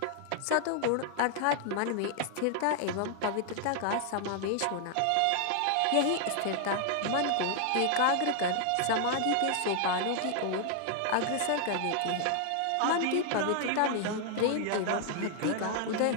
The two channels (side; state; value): both; different; correlation 0.00